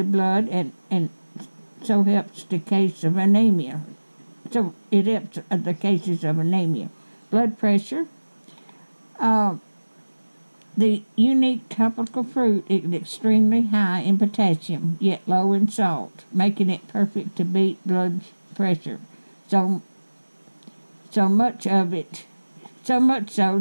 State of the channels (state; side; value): inverted; both; correlation -1.00